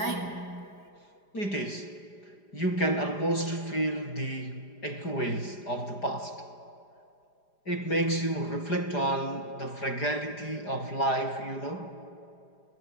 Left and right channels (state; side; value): late; right; 4.9 ms